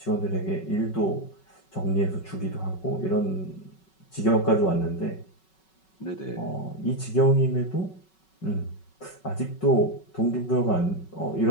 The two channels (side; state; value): right; late; 5.3 ms